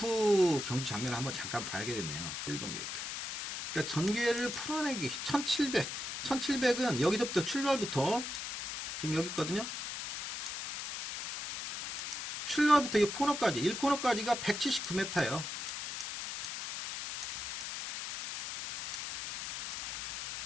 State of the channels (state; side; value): noise; left; hiss, 5 dB below the sound